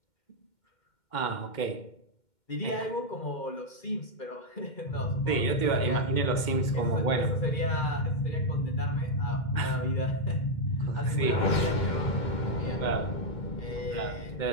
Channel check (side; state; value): right; late; 2.1 ms